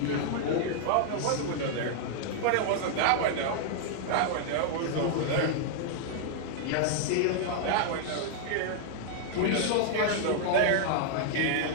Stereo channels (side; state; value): both; different; correlation -0.01